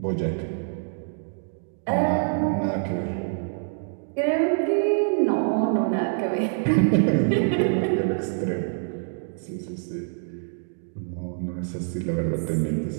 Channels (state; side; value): silent; left; digital silence